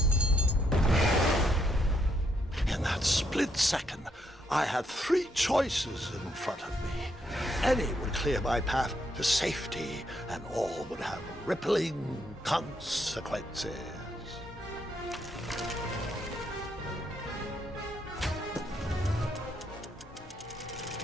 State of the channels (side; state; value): both; normal; correlation 0.76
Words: Split second, I had three choices in front of me. Any would clear my path to safety, and all would have rippling consequences.